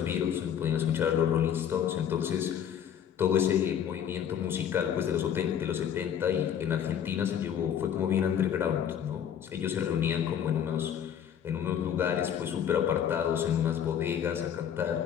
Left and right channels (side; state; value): right; quieter; 9.0 dB